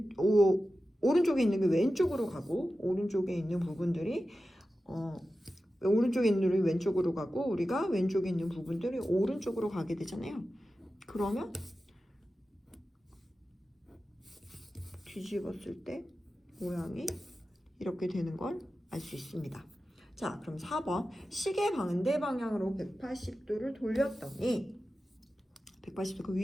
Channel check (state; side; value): normal; both; correlation 0.93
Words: 오른쪽에 있는 게 왼쪽으로 가고 오른쪽에 있는 부분들이 오른쪽에 있는 게 왼쪽으로 가고 우리가 왼쪽에 있는 부분들이 오른쪽으로 가게 되잖아요. 그러면 뒤집었을 때 모양이 이렇게 되는 걸 알 수 있습니다. 자, 그럼 4번 시계 반대 방향으로 180도를 돌렸더니 180도 그